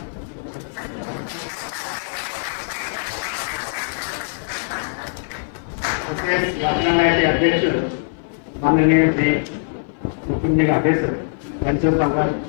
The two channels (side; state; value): right; silent; 57 dB below the other